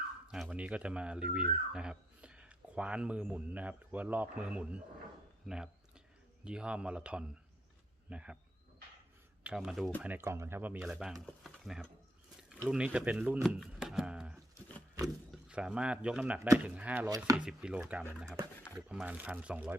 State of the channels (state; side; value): normal; both; correlation 0.74